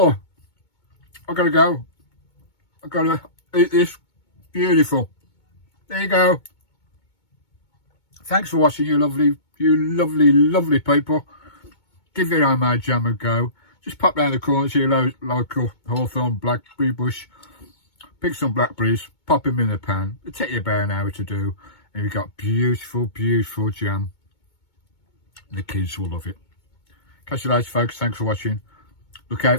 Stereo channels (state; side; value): late; right; 2.2 ms